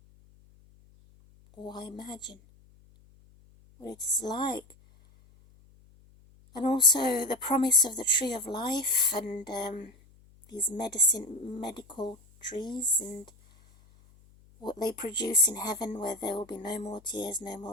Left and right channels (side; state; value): left; noise; hum, 27 dB below the sound